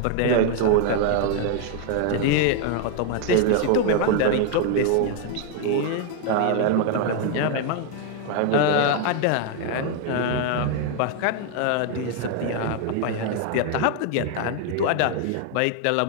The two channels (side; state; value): both; different; correlation 0.01